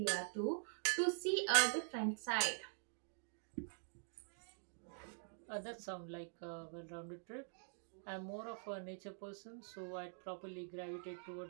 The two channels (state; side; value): silent; left; digital silence